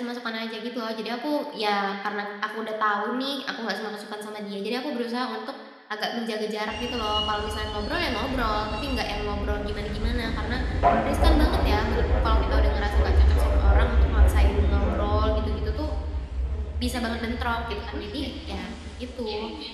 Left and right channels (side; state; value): both; identical; correlation 1.00